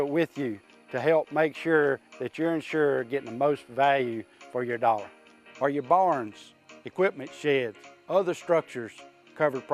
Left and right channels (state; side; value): identical; both; correlation 1.00